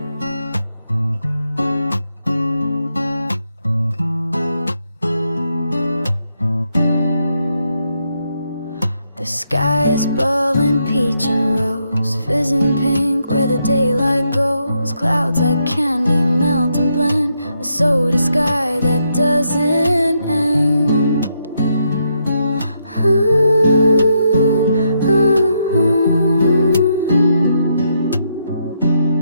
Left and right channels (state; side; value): inverted; both; correlation -0.79